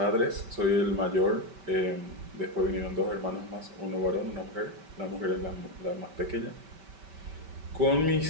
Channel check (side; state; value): left; late; 5.2 ms